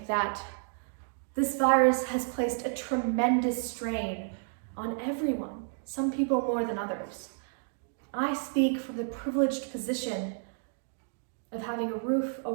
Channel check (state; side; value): silent; left; digital silence